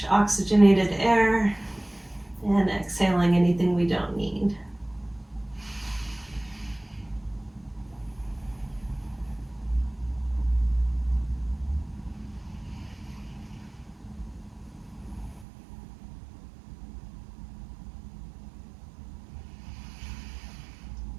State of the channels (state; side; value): drops out; left; at 15.5 s